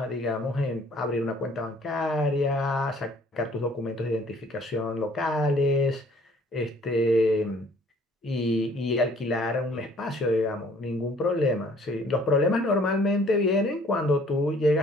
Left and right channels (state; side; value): normal; both; correlation 0.57